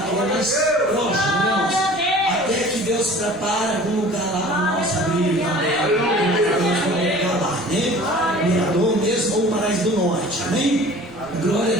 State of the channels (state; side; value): noise; left; rumble, 25 dB below the sound